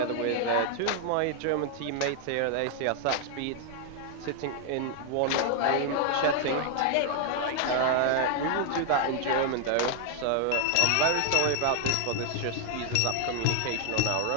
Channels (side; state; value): both; different; correlation 0.00